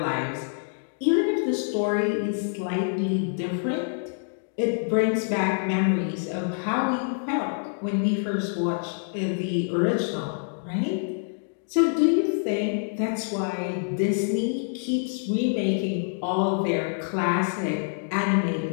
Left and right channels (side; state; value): right; silent; digital silence